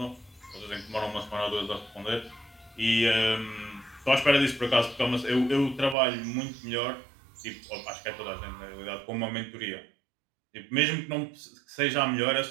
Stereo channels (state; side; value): drops out; left; at 6.0 s